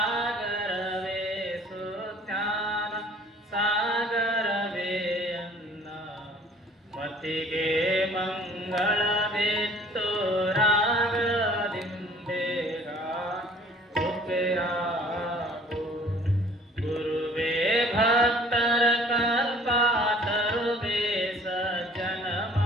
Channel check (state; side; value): normal; both; correlation 0.53